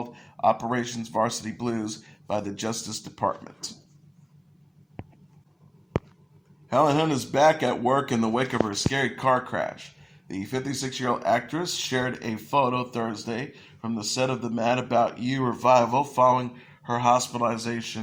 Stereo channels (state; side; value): identical; both; correlation 1.00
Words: Operations Varsity Blues by the Justice Department. Helen Hunt is back at work in the wake of her scary car crash. The 56-year-old actress shared a photo Thursday from the set of the Mad About You revival following her